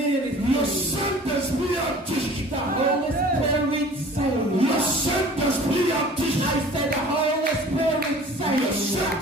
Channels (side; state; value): both; normal; correlation 0.46